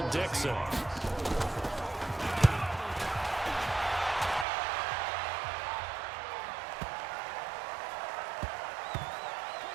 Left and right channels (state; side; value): drops out; left; at 4.5 s